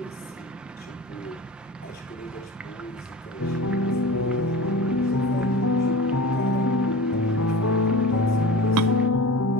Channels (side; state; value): both; normal; correlation 0.33